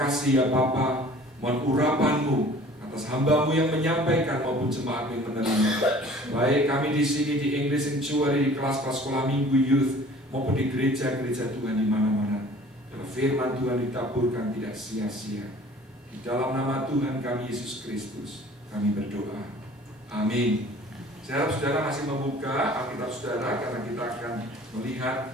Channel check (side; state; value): both; normal; correlation 0.49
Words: ya Bapa. Mohon urapan-Mu atas hamba-Mu yang menyampaikan maupun jemaat yang menerima. Baik kami di sini di English Sanctuary, di kelas-kelas sekolah minggu youth, maupun di gereja-gereja Tuhan di mana-mana. Biar firman Tuhan ditaburkan tidak sia-sia. Di dalam nama Tuhan kami Yesus Kristus kami berdoa. Amin. Saya harap saudara masih membuka Alkitab saudara, karena kita akan